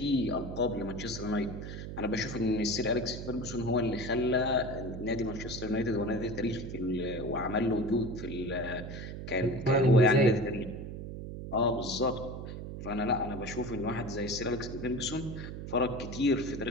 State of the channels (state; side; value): noise; right; hum, 8 dB below the sound